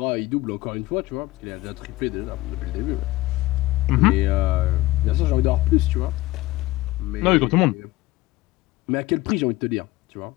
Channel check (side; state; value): right; quieter; 18.4 dB